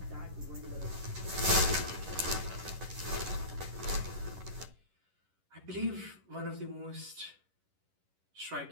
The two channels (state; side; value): late; left; 11 ms